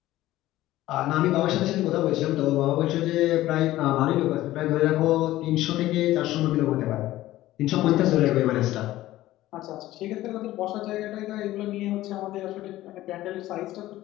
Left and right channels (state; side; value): quieter; right; 15.6 dB